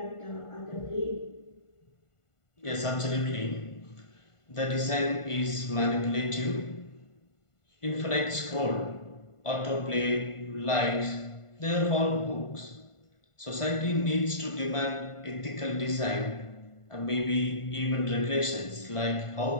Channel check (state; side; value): late; right; 1.5 ms